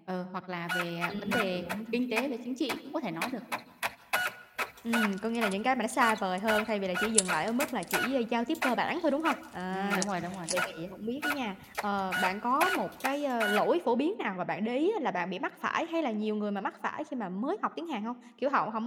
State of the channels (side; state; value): both; identical; correlation 1.00